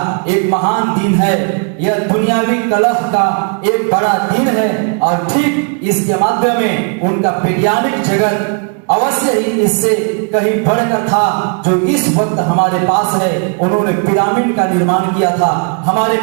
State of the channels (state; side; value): quieter; left; 39.3 dB